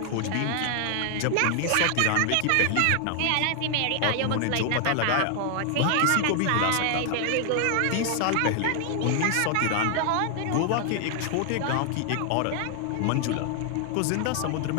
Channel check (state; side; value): different; both; correlation 0.00